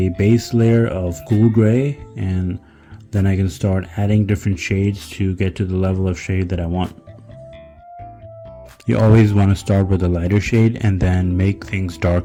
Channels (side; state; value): both; identical; correlation 1.00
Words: base layer of cool gray, and then I can start adding different shades to get to the level of shade that I want. You always want to start with a lighter shade and then make things